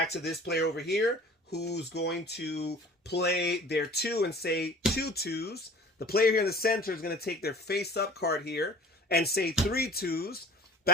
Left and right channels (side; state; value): both; normal; correlation 0.46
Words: to this player over here, who's going to play their 2 and say 2 2s. The player here in the center is going to take their face up card here and say 3 2s,